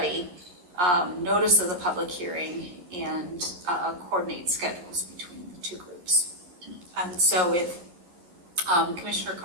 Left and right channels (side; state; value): left; late; 11 ms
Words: notice of the public hearing, and coordinate schedules between the two groups. And so if Commissioner